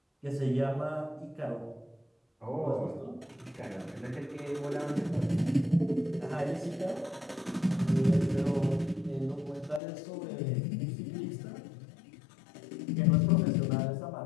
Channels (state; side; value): drops out; right; at 9.8 s